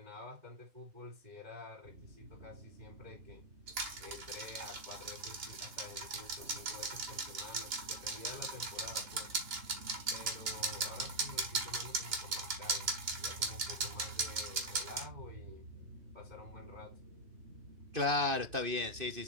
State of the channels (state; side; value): late; left; 2.9 ms